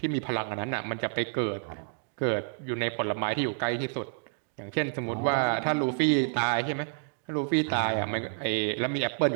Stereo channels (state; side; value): silent; left; digital silence